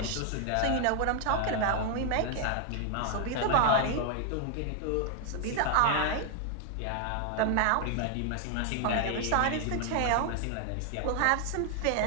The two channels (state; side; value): different; both; correlation 0.00